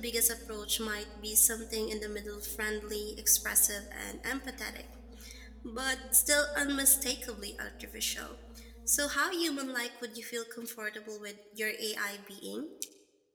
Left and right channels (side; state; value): both; identical; correlation 1.00